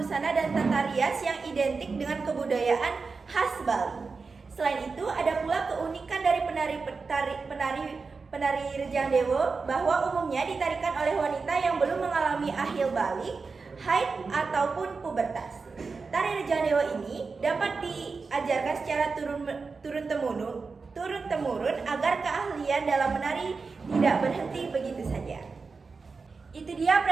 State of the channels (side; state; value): left; quieter; 4.5 dB